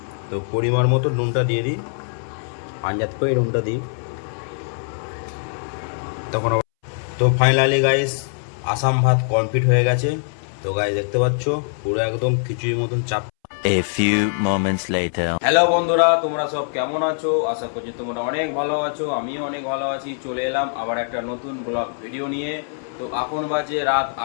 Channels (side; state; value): right; silent; 64 dB below the other